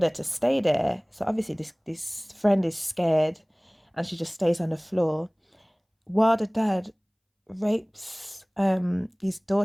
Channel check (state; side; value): identical; both; correlation 1.00